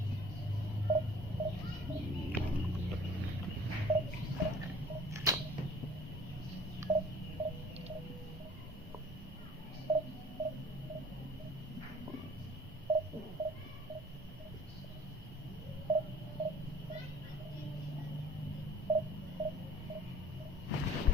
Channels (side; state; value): both; normal; correlation 0.49